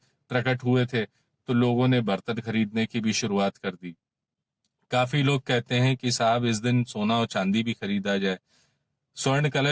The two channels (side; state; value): both; identical; correlation 1.00